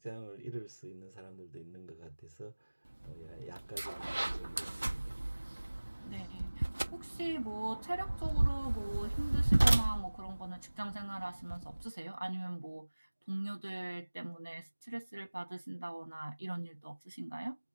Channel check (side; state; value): both; inverted; correlation -1.00